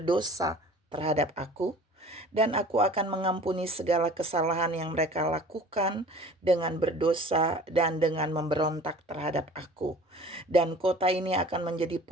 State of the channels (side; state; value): both; normal; correlation 0.45